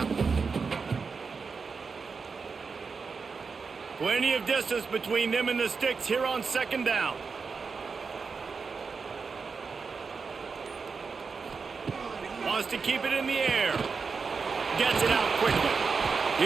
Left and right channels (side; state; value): left; quieter; 5.0 dB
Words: one. Plenty of distance between them and the sticks here on second down. Wants to keep it in the air. Gets it out quickly.